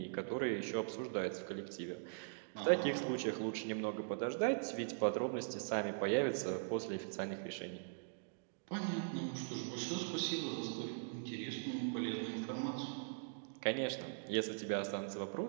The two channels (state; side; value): silent; left; digital silence